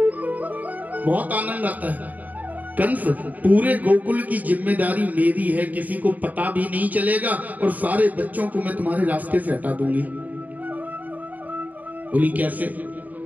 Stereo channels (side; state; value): left; late; 0.078 ms